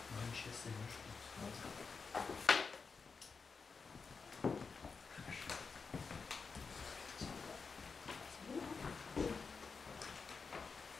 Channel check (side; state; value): right; quieter; 5.0 dB